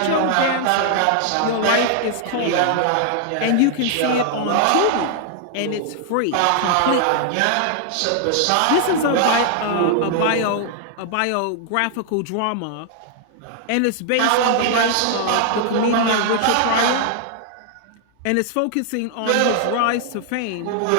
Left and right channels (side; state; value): both; different; correlation 0.00